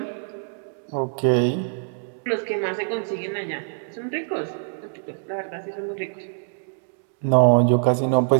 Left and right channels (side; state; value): left; silent; digital silence